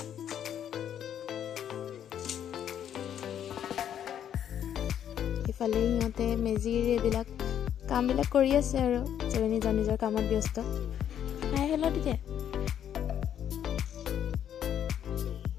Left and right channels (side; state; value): right; quieter; 9.7 dB